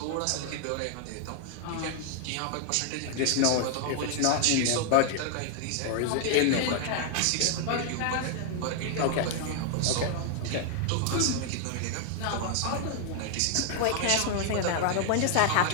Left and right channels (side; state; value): both; different; correlation 0.00